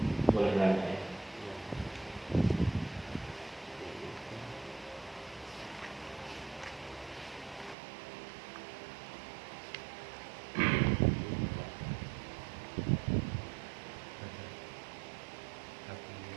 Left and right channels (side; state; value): left; drops out; at 7.8 s